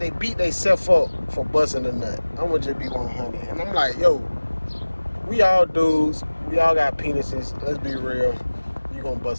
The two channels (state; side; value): inverted; both; correlation -1.00